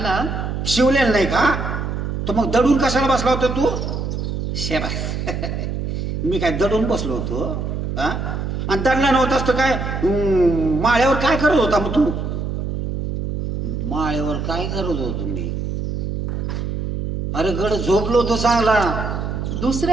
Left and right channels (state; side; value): noise; right; hum, 3 dB below the sound